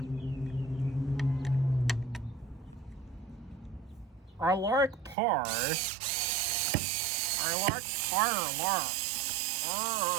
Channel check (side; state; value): left; drops out; at 5.2 s